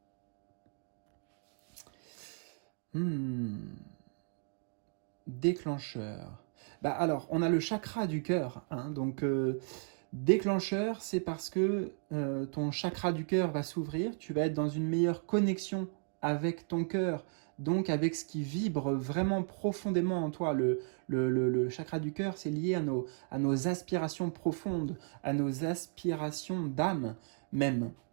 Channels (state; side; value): silent; left; 55 dB below the other